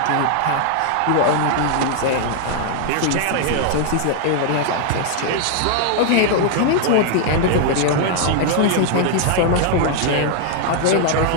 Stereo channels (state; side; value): different; both; correlation 0.00